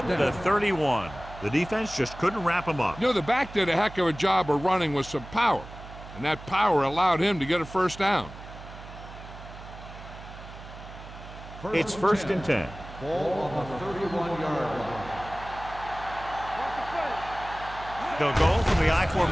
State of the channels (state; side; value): noise; right; hum, 15 dB below the sound